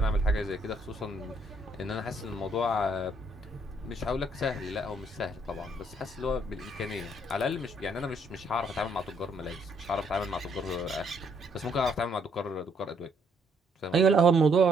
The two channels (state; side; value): normal; both; correlation 0.69